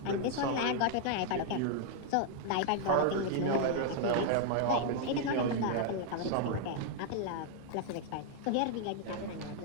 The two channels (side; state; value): both; different; correlation 0.00